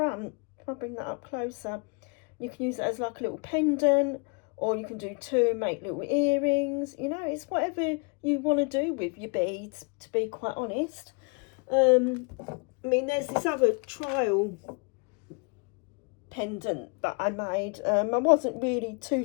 If I bring that up closer, you can use it as like a little pendant, or you can do two and make little earrings. You know, it's whatever you want to do with your beads, to be quite honest. I mean, there's this other trial pendant that I made. I wasn't really too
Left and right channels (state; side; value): quieter; right; 35.2 dB